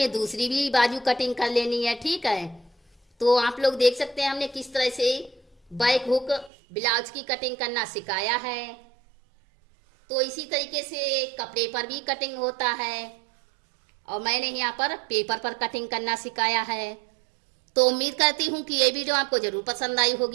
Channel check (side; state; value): left; drops out; at 6.5 s